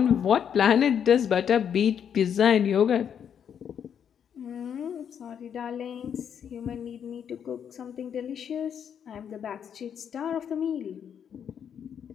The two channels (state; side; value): quieter; right; 8.2 dB